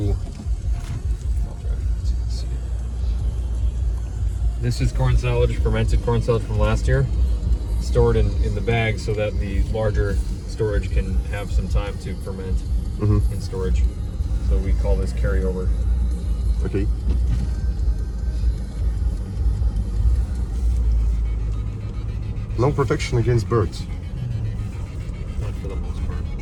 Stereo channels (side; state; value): both; identical; correlation 1.00